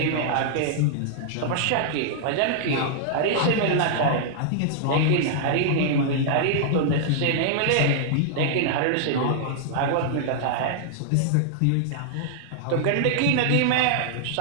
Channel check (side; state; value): both; different; correlation -0.01